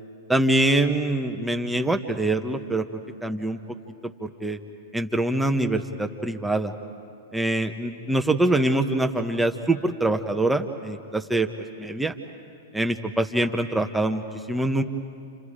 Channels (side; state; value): both; normal; correlation 0.74